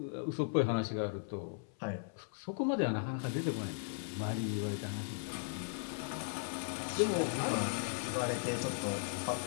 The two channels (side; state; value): right; silent; 53 dB below the other